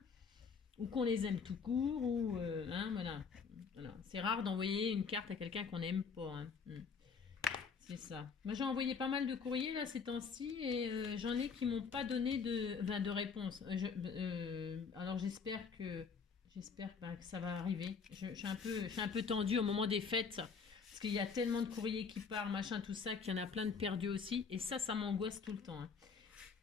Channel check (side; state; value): right; quieter; 5.6 dB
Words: ou qu'on les aime tout court, ou hein, voilà. C'est rare d'envoyer une carte à quelqu'un qu'on n'aime pas. Hein. C'est ça. Moi j'ai envoyé pas mal de courriers là ces temps-ci et j'en ai qui m'ont pas donné de réponse. Alors j'espère que ça va arriver. Je suis un peu tendue au moment des fêtes. Parce qu'il y a tellement de courriers qui partent, machin, tout ça, qu'il y en a plein de perdus aussi. Et ça m'angoisse tout le temps.